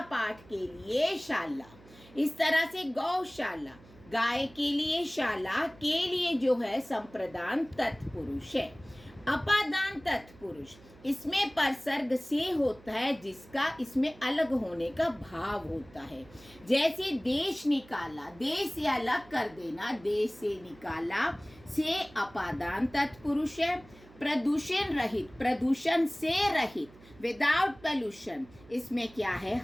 पाठ के लिए शाला, इस तरह से गौशाला। गाय के लिए शाला, के लिए जो है संप्रदान तत्पुरुष है। अपादान तत्पुरुष, इसमें परसर्ग से होता है, जिसका इसमें अलग होने का भाव होता है। जैसे देश निकाला, देश से अलग कर देना, देश से निकाला, से अपादान तत्पुरुष है। प्रदूषण रहित, प्रदूषण से रहित, विदाउट पोल्यूशन, इसमें क्या है?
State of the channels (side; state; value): right; noise; hum, 23 dB below the sound